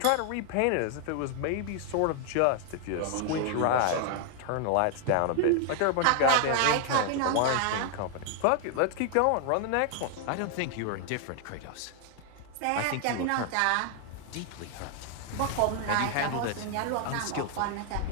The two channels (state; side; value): different; both; correlation 0.00